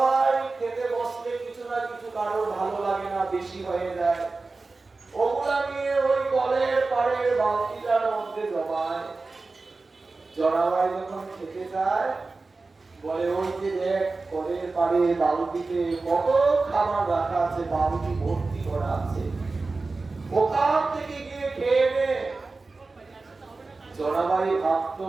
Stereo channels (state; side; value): quieter; left; 3.7 dB